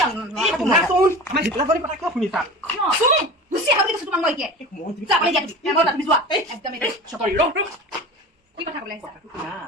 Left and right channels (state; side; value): normal; both; correlation 0.35